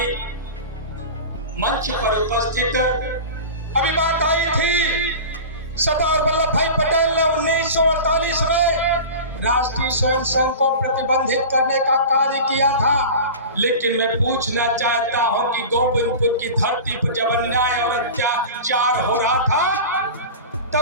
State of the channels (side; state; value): both; inverted; correlation -0.32